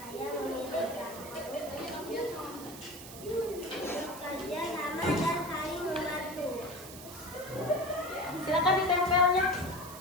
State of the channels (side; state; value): right; noise; hiss, 14 dB below the sound